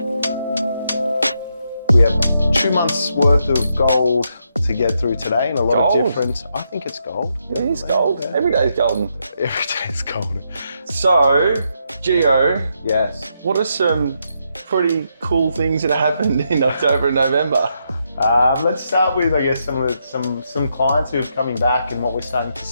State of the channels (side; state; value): both; inverted; correlation -0.80